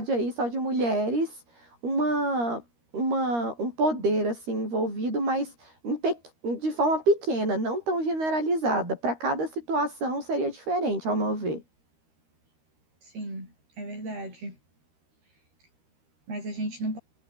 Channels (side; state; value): left; late; 13 ms